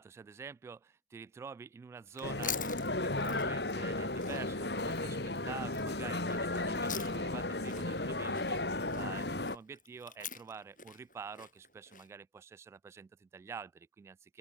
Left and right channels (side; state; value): both; normal; correlation 0.01